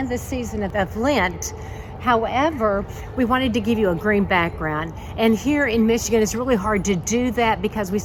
the season of Lent. However, we wanted to give you a green background. And here in Michigan, it's really hard to do that because we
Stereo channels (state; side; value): identical; both; correlation 1.00